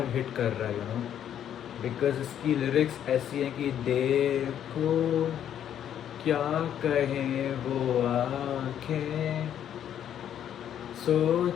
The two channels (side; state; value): right; quieter; 9.9 dB